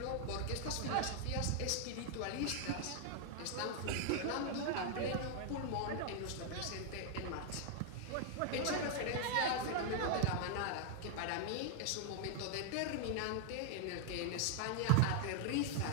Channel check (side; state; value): both; different; correlation 0.00